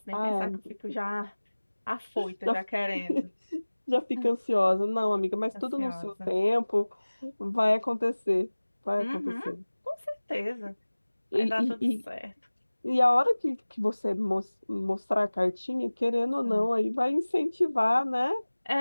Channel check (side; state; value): both; inverted; correlation -1.00